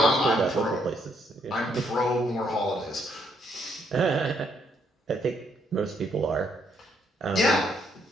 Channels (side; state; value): both; normal; correlation 0.72